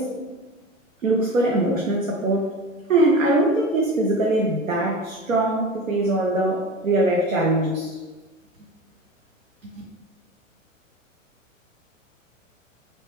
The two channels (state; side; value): normal; both; correlation 0.32